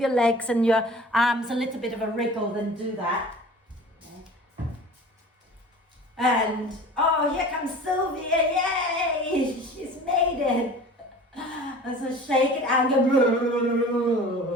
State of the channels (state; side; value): normal; both; correlation 0.42